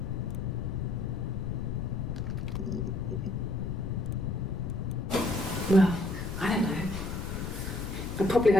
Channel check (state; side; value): noise; left; rumble, 4 dB below the sound